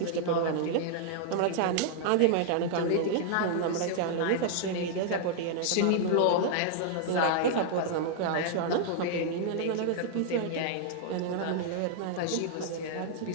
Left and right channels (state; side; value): different; both; correlation -0.01